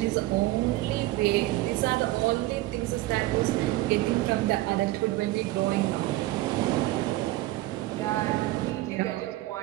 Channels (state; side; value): quieter; left; 17.6 dB